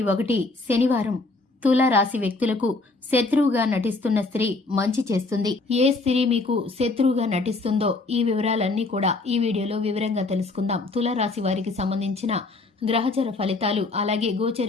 1 శనివారం. తుల రాశి వ్యక్తులకు శత్రువుగా నటిస్తున్న స్త్రీ మంచి చేస్తుంది. ఏ స్త్రీ మీకు శత్రువుగా నటిస్తుందో ఈ వివరాలన్నీ కూడా ఈ వీడియోలో వివరంగా తెలుసుకుందాం. తుల రాశి వారికి సంబంధించిన గ్రహచర ఫలితాలు, అలాగే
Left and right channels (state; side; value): quieter; right; 3.4 dB